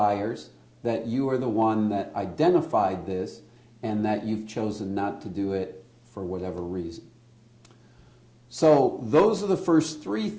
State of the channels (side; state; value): both; identical; correlation 1.00